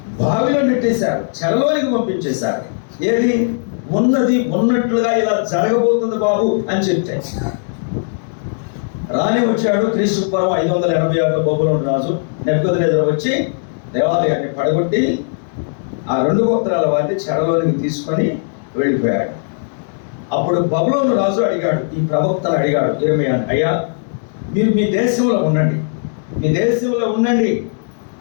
బావిలో నెట్టేశారు, చెరలోనికి పంపించేశారు. ఏది ఉన్నది ఉన్నట్లుగా ఇలా జరగబోతుంది బాబు అని చెప్తే రాని వచ్చాడు. క్రీస్తు పూర్వం 586లో బబులోను రాజు నెబుకద్నెజరు వచ్చి దేవాలయాన్ని పడగొట్టి ఆ 2 గోత్రాల వారిని చెరలోనికి తీసుకొని వెళ్ళిపోయాడు. అప్పుడు బబులోను రాజు అడిగాడు, ఈ ప్రవక్తను అడిగాడు ఇర్మియాను, అయ్యా మీరు మీ దేశంలో ఉండండి,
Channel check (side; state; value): right; silent; 68 dB below the other